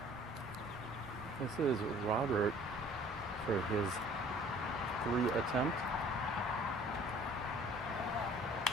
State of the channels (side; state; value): both; normal; correlation 0.52